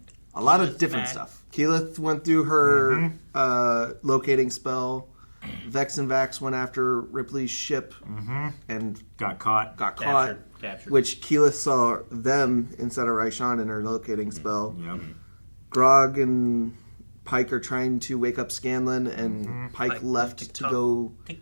A lot of different stuff. Keyleth went through her locating spell. Vex and Vax went after Ripley's ship and Got caught. Captured. which Keyleth saw them instead of Raishan in her locating spell. Yep. Grog and Pike are trying to wake up Scanlan, and Pike left to go To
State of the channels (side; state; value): both; inverted; correlation -1.00